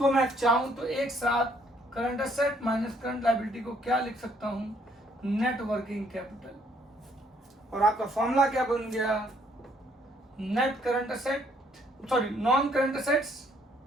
मैं चाहूं तो एक साथ current asset minus current liability को क्या लिख सकता हूं, नेट वर्किंग कैपिटल। और आपका फॉर्मूला क्या बन गया, net current asset, sorry non current assets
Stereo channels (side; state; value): both; normal; correlation 0.66